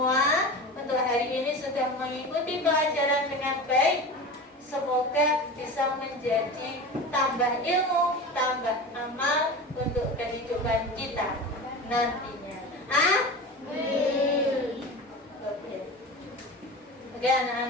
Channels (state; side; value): normal; both; correlation 0.30